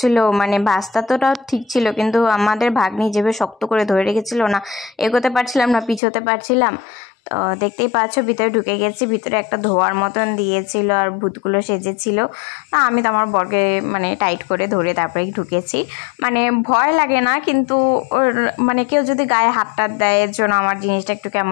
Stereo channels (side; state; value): right; drops out; at 6.0 s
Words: মানে ভাস্তা তোটা ঠিক ছিল, কিন্তু আমাদের ভাগ্নি যেভাবে শক্ত করে ধরে রেখেছিল না, এগোতে পারছিলাম না, পিছোতে পারছিলাম। তো দেখতেই পাচ্ছ ভিতরে ঢুকে গেছি। ভিতরে একটা ধোয়ার মতন দিয়েছিল আর ভূতগুলো সেজেছিল। আমি তো আমার বরকে মানে টাইট করে ধরে তারপরে ঢুকেছি। মানে ভয় লাগে না, কিন্তু ওর মানে কেউ যদি গায়ে হাত টাত দেয় এর জন্য আমার জিনিসটা একটু